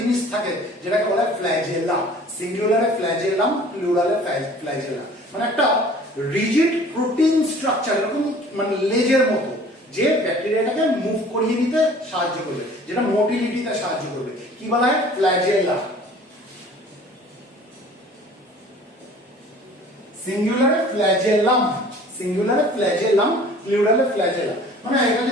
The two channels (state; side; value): normal; both; correlation 0.48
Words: থাকে যেটাকে বলা হয় ফ্ল্যাজেলা। সিঙ্গুলারে flagellum, প্লুরালে flagella. মানে একটা রিজিড প্রোটিন স্ট্রাকচার, এরকম মানে লেজের মতো, যে ব্যাকটেরিয়াটাকে মুভ করিয়ে নিতে সাহায্য করবে, যেটা মোটিলিটিতে সাহায্য করবে। কি বলা হয়? ফ্ল্যাজেলা। সিঙ্গুলারে flagellum, সিঙ্গুলারে flagellum, প্লুরালে flagella. মানে এটা